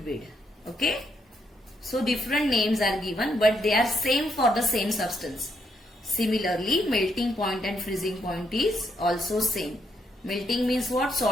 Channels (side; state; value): both; normal; correlation 0.75